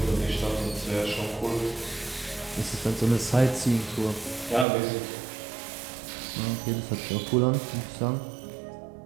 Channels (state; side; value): drops out; left; at 4.7 s